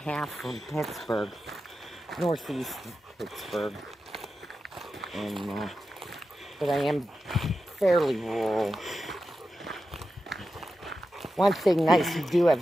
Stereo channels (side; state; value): both; normal; correlation 0.91